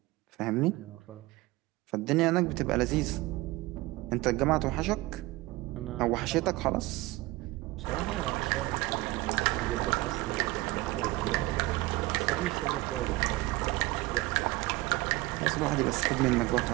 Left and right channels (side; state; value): left; quieter; 20.2 dB